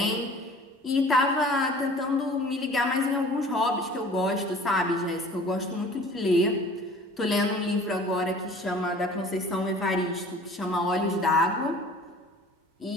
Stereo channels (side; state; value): both; normal; correlation 0.47